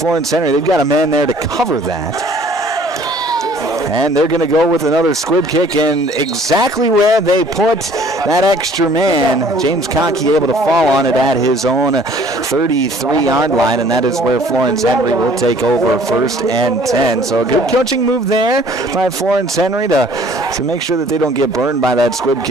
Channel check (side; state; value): both; normal; correlation 0.55